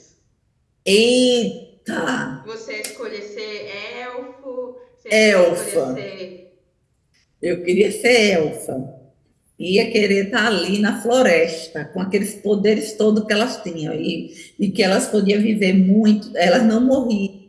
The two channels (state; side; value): identical; both; correlation 1.00